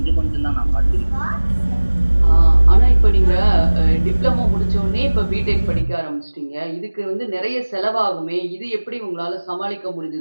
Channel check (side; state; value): both; inverted; correlation -1.00